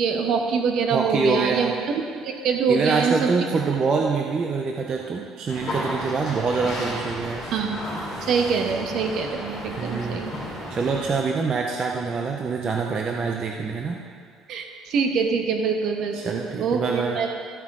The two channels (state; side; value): quieter; left; 4.5 dB